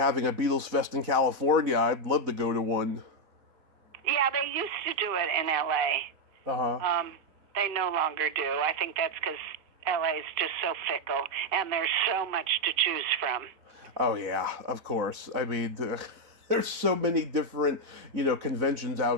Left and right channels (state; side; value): late; left; 4.0 ms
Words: a Beatles Fest in California. I'd love to go to one. Yeah, they used to do it in L.A. Uh-huh. They no longer do. I think that's because L.A. is just so fickle, and there's so much to choose from. Oh, yeah, of course. I mean, there's so many different, conventions